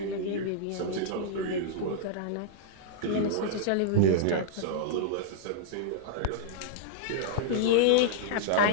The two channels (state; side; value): different; both; correlation -0.01